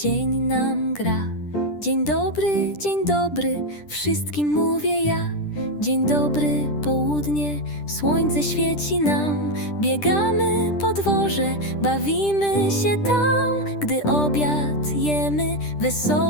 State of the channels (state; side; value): late; right; 10 ms